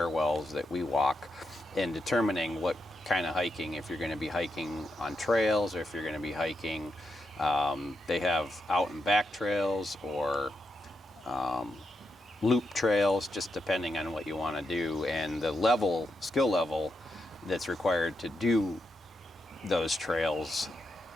that we walk, and determining what kind of hiking, if you're going to be hiking on trails or if you're going to be hiking, they have out and back trails or loop trails, just depending on what you want to do, and the skill level that's required to do those trails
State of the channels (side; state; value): both; normal; correlation 0.84